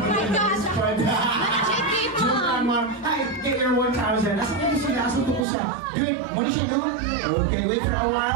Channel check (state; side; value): drops out; left; at 5.5 s